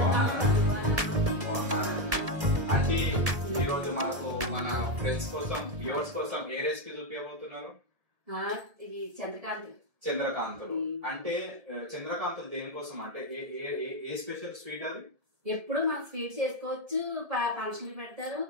అంటే ఈరోజు మనకు మన ఫ్రెండ్స్ కోసం వ్యూవర్స్ కోసం ఏ రెసిపీ చూపించబోతున్నారు? చంద్రకాంతులు. అంటే చంద్రకాంతులు దేనికోసం అంటే ఏ స్పెషల్ స్వీట్ అది? ఎప్పుడు మన స్వీట్ చేసుకోవచ్చు, ఫంక్షన్లు పెడతారు,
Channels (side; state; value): left; late; 1.8 ms